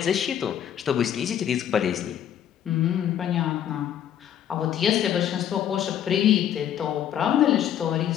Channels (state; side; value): quieter; right; 10.1 dB